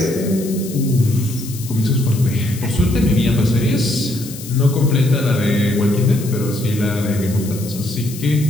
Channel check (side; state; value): left; noise; hiss, 14 dB below the sound